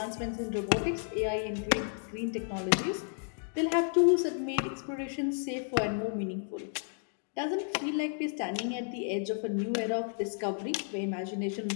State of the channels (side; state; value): right; silent; 56 dB below the other